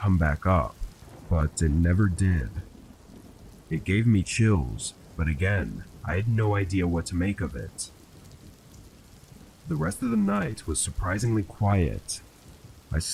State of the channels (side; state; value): both; identical; correlation 1.00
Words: back up, but it never did. It gave me chills, but again, I had no idea what to make of it. The rest of the night was surprisingly quiet. I